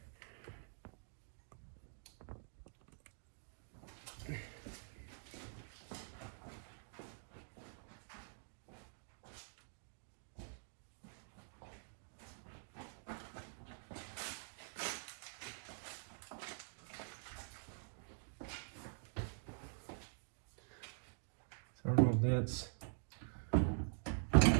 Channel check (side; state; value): left; silent; digital silence